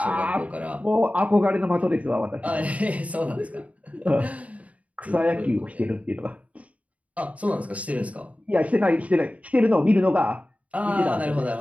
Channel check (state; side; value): late; left; 0.068 ms